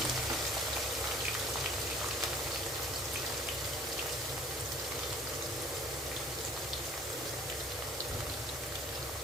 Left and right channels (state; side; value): normal; both; correlation 0.51